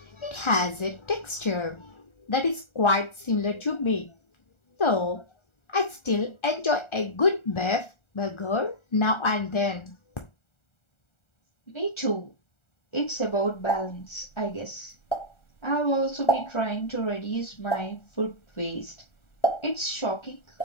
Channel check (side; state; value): right; late; 1.3 ms